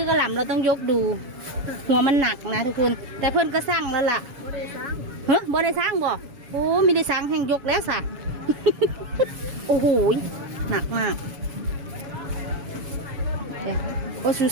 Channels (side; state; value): left; late; 7.1 ms